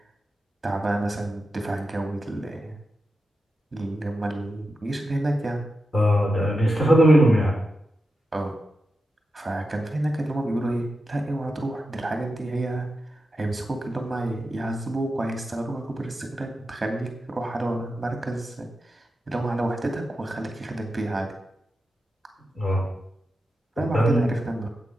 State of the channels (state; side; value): normal; both; correlation 0.89